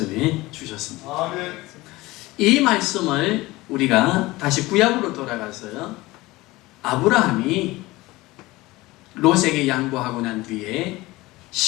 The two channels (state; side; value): quieter; right; 20.0 dB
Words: 주셨습니다. 아멘. 이 말씀을 우리가 다시 구약으로 돌아가서요. 아브라함이 롯에게 양보하고 난 뒤에